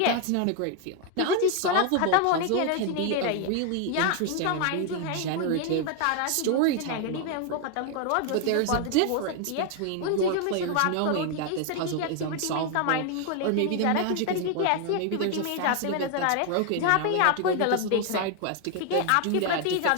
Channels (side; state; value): both; different; correlation 0.00